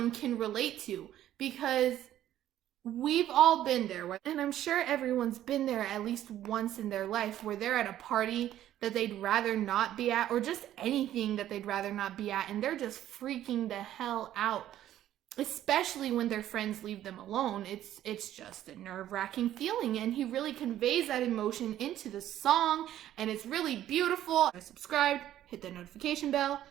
can relate to, because we've all been there, and I'm sure everyone's been there at least once in their life, where they're at a party that they'd rather not be at, or just anything that they'd rather not be at, and they're just freaking the hell out, especially when their friends leave them alone. It's just a nerve-wracking feeling, and he really conveys that emotion into the song, and it's really beautiful. Subscribe, hit the notification bell,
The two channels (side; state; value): left; quieter; 12.4 dB